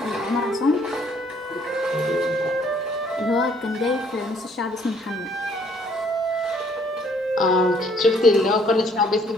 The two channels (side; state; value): both; normal; correlation 0.63